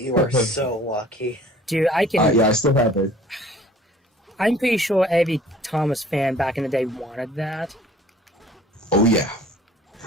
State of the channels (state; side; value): normal; both; correlation 0.51